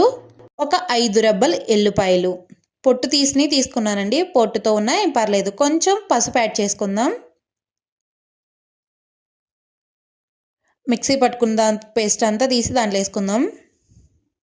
ఒక 5 రెబ్బలు ఎల్లుపాయలు, పొట్టు తీసుకున్నానండి. పొట్టుతో ఉన్నా ఏం పర్లేదు. కొంచెం పసుపు యాడ్ చేసుకుందాం. మిక్సీ పట్టుకున్న పేస్ట్ అంతా తీసి దాంట్లో వేసుకుందాం.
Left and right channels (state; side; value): identical; both; correlation 1.00